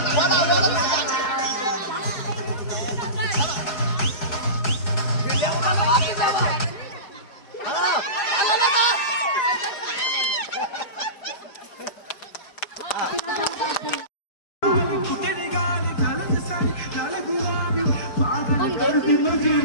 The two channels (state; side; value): late; right; 4.7 ms